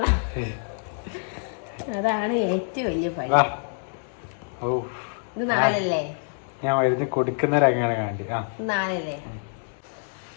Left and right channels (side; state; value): right; silent; 59 dB below the other